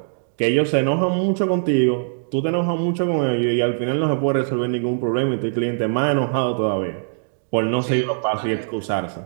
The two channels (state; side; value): silent; left; digital silence